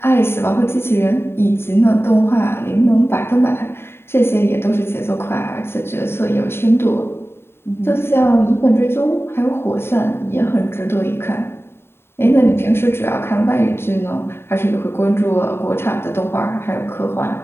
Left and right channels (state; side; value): late; right; 0.11 ms